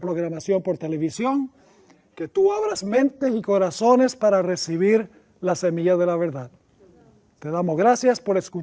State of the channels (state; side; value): identical; both; correlation 1.00